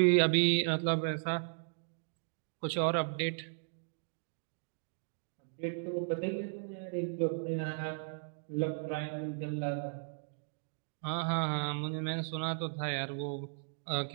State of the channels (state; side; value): silent; left; digital silence